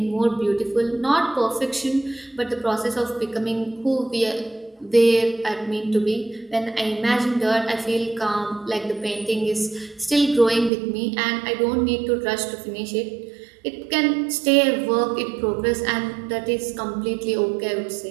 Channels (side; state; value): left; drops out; at 10.7 s